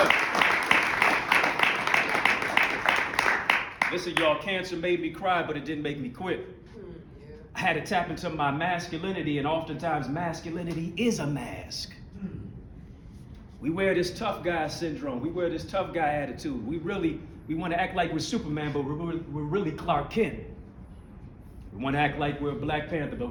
Listen, y'all, cancer made me cry, but it didn't make me quit. I had to tap into my masculinity, and oftentimes masculinity is a mask. We wear this tough guy syndrome. We wear this tough guy attitude. We want to act like we're Superman, but we're really Clark Kent. We want to act like we're Black Panther, but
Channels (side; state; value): both; identical; correlation 1.00